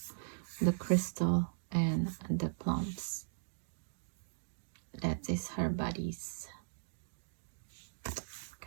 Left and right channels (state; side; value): silent; left; digital silence